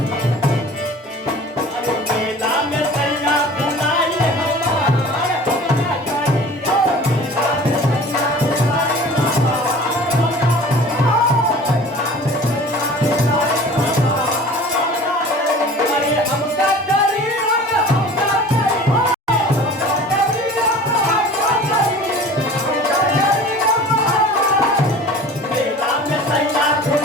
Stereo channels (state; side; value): normal; both; correlation 0.43